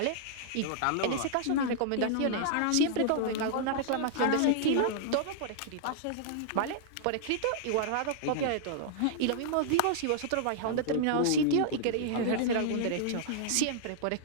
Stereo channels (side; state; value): both; different; correlation -0.01